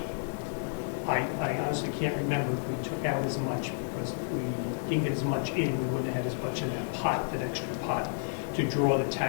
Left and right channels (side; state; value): right; silent; digital silence